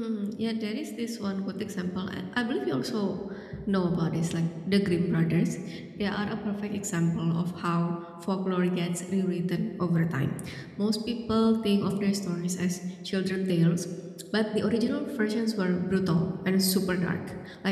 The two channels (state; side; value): identical; both; correlation 1.00